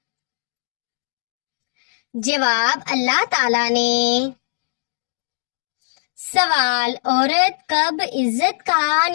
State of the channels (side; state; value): right; silent; digital silence